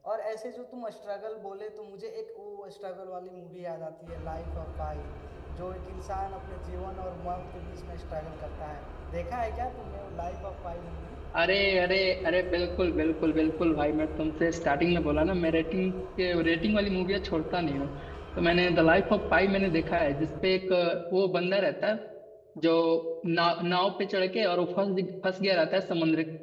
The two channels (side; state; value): both; identical; correlation 1.00